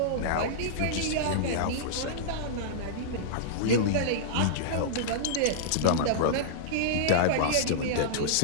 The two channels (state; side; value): different; both; correlation -0.02